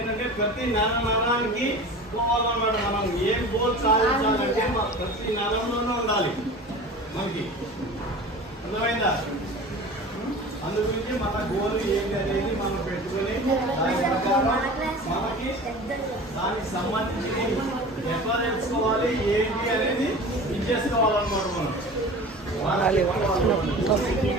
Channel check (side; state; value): both; normal; correlation 0.37